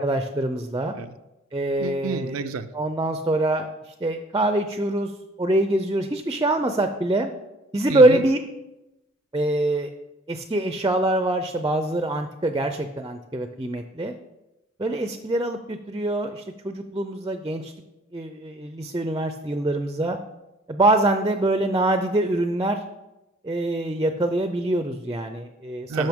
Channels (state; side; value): normal; both; correlation 0.56